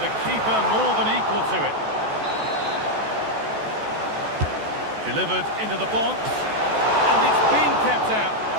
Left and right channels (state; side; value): late; left; 14 ms